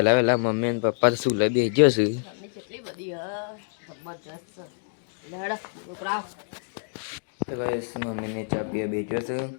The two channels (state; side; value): silent; right; digital silence